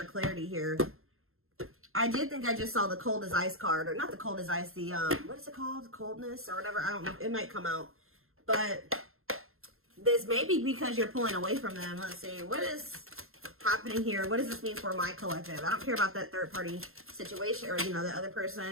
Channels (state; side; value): late; left; 0.61 ms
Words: or clarity here. I did think I just saw the cold as ice card, or not the cold as ice, the, what is it called? Coldness or whatever. I don't know. It might come out. But this may be because you're pulling away from them. Let's see. What is happening here? What does this mean for my collective? I don't care about that third party situation or, you know, the other